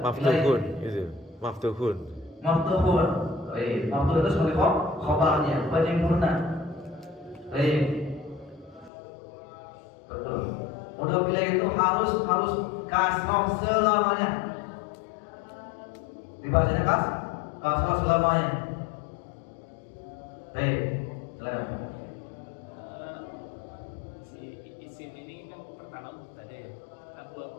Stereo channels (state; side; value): drops out; right; at 8.9 s